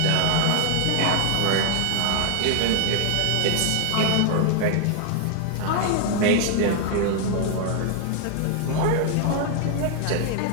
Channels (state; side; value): different; both; correlation 0.00